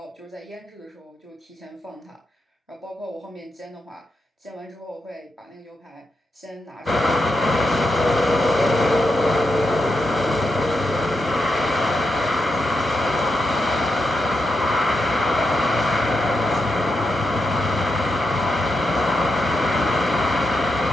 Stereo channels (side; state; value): both; normal; correlation 0.85